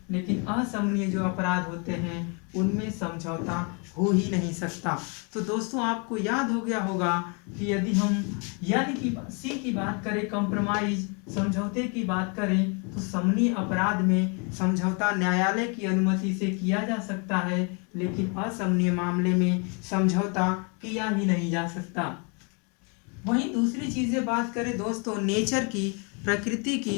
लेकिन असमनीय जो अपराध होते हैं उनमें समझौता हो ही नहीं सकता। तो दोस्तों आपको याद हो गया होगा कि यदि हम सी की बात करें कंप्रोमाइज, समझौते की बात करें तो समनीय अपराध में समझौता न्यायालय की अनुमति से किया जा सकता है, लेकिन असमनीय मामले में समझौता किया ही नहीं जा सकता। वहीं दूसरी चीज़ें बात करें दोस्तों नेचर की, प्रकृति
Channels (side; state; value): right; quieter; 34.9 dB